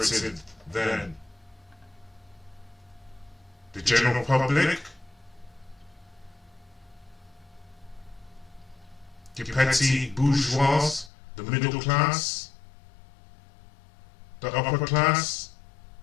then? The general public? The petty bourgeois? The middle class? The upper class?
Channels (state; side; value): drops out; right; at 11.1 s